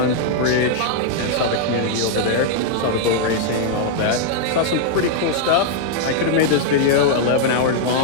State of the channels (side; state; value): both; different; correlation -0.01